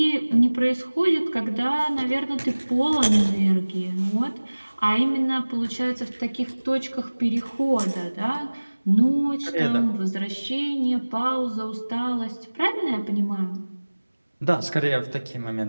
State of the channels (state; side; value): inverted; both; correlation -1.00